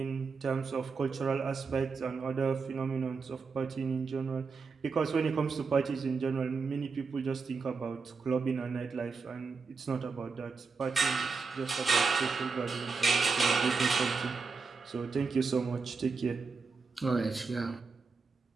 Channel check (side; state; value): left; quieter; 4.8 dB